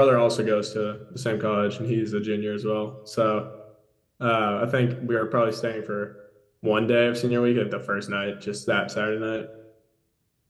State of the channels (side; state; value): both; identical; correlation 1.00